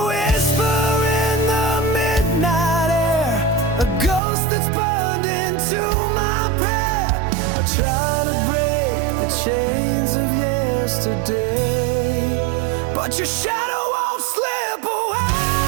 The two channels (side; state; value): left; drops out; at 4.2 s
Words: whisper in the midnight air, a ghost that's burned into my prayer. I try to break the chains of yesterday, but your shadow won't slip away.